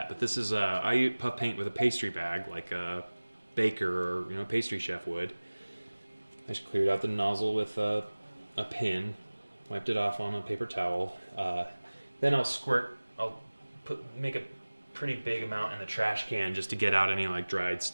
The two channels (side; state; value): both; inverted; correlation -1.00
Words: but this is I use puff paint with a pastry bag, like a baker or pastry chef would. I just cleared out the nozzle with a pin, wiped it off on a paper towel. Then I'll make a pretty big amount in the trash can just to get out any like dried